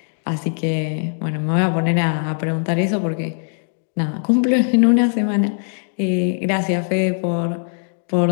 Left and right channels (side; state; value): right; silent; digital silence